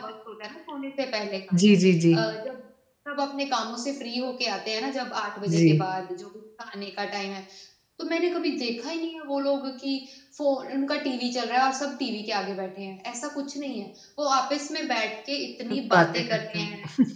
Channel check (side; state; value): both; identical; correlation 1.00